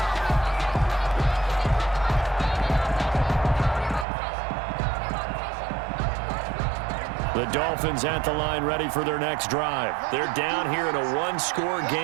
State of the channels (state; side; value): drops out; left; at 4.0 s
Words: The Dolphins at the line ready for their next drive. They're down here in a 1-score